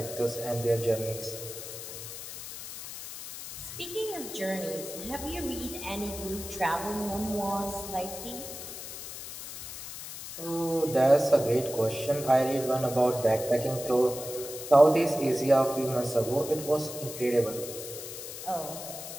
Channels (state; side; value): noise; left; hiss, 10 dB below the sound